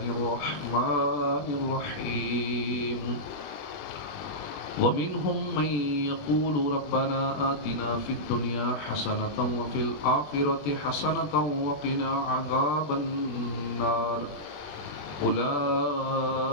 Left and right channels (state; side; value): late; right; 21 ms